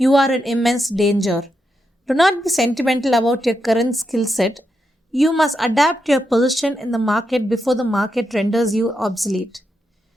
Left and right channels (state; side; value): normal; both; correlation 0.84